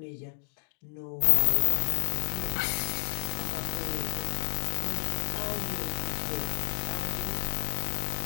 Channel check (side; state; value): right; silent; digital silence